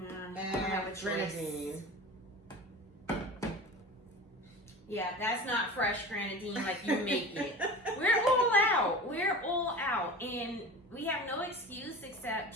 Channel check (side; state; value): both; normal; correlation 0.35